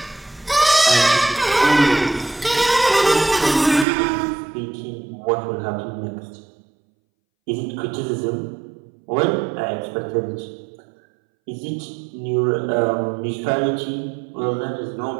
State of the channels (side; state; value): left; drops out; at 3.9 s